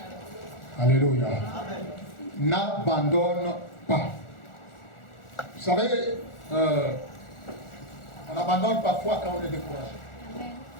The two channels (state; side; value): late; right; 1.4 ms